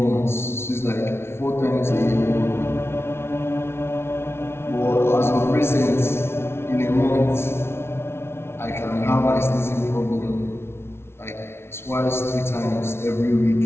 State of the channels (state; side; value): late; right; 0.12 ms